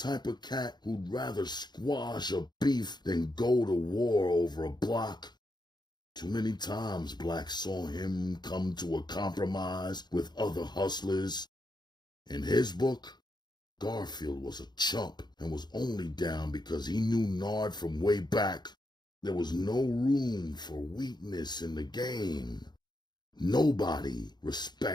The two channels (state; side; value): late; right; 0.21 ms